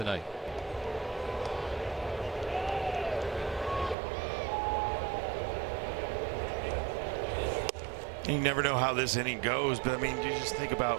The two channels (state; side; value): drops out; left; at 4.0 s